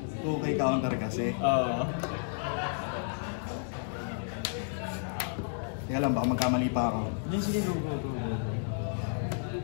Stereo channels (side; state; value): right; silent; 57 dB below the other